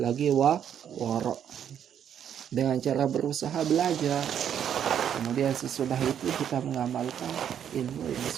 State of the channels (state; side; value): quieter; left; 9.1 dB